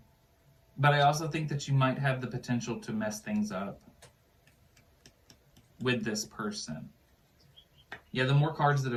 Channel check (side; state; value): both; identical; correlation 1.00